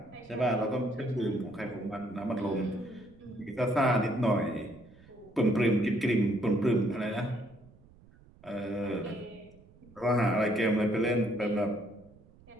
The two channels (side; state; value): right; noise; rumble, 25 dB below the sound